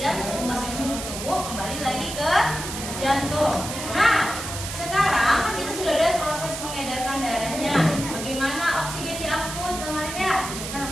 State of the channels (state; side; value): noise; right; hiss, 7 dB below the sound